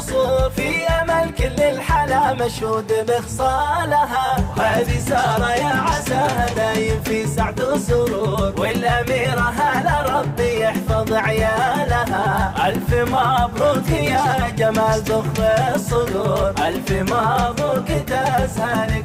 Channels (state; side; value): identical; both; correlation 1.00